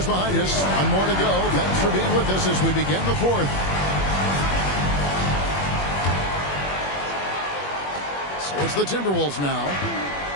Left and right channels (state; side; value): late; right; 21 ms